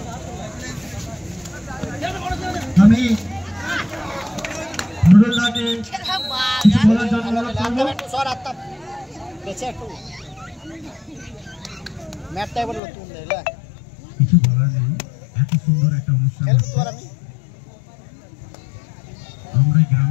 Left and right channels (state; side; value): drops out; right; at 12.8 s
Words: আমি নুরুল্লাহকে কিছু বলার জন্য অনুরোধ করব। সর আত্তা বেঁচে একটু ম্যাপটাই বললো তুমি দেখলে কিছু বলার নেই, এত সুন্দর একটা অনুষ্ঠান আমরা